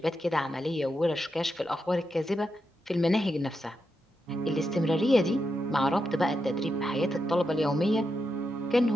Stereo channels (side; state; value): both; normal; correlation 0.85